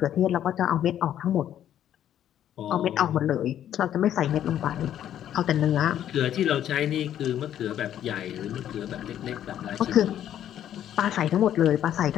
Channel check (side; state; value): right; quieter; 10.9 dB